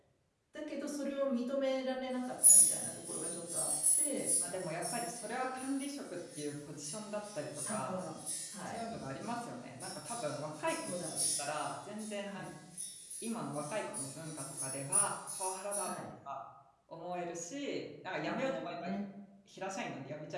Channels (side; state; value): both; identical; correlation 1.00